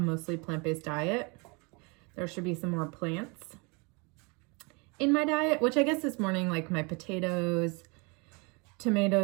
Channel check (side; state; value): left; quieter; 30.3 dB